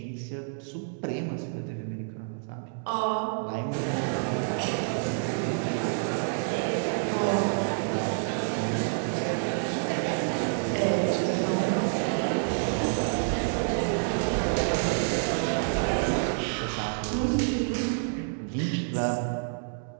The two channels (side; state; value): left; silent; digital silence